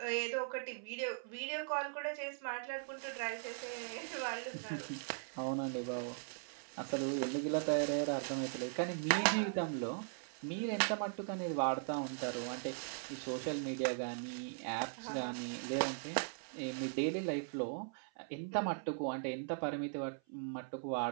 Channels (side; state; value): left; silent; 51 dB below the other